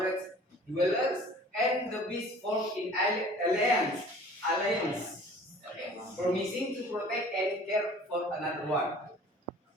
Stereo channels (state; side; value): normal; both; correlation 0.48